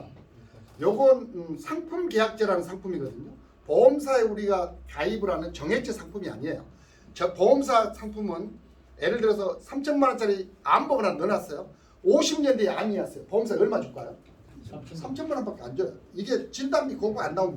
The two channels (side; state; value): both; identical; correlation 1.00